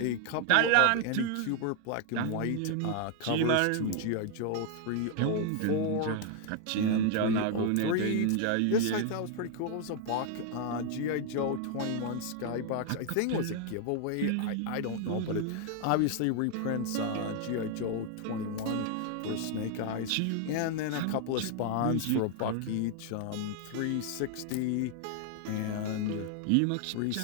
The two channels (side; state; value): both; different; correlation 0.00